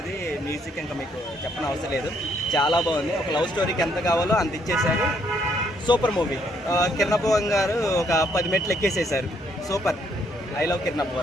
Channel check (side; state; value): both; normal; correlation 0.70